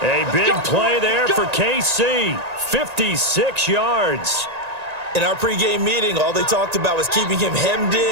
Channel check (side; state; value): left; late; 1.9 ms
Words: A big play there for KC. 56 yards. In our pregame meeting, all they talked about was keeping him hemmed